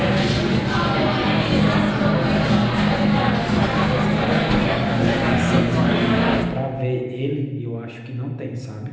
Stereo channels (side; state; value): both; identical; correlation 1.00